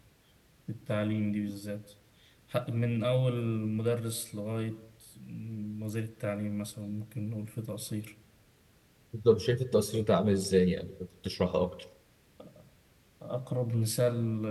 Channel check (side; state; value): both; identical; correlation 1.00